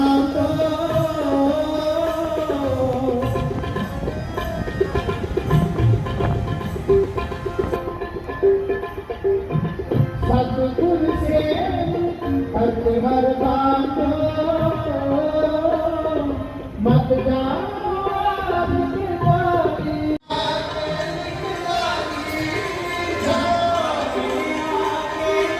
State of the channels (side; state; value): both; identical; correlation 1.00